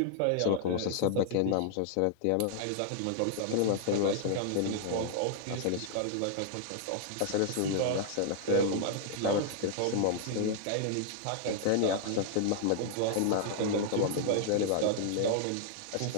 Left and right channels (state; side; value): different; both; correlation 0.00